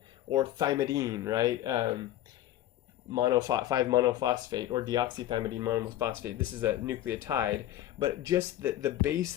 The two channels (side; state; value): right; quieter; 13.3 dB